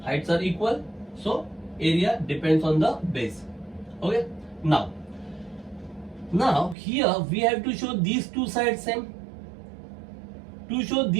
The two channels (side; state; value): left; drops out; at 6.8 s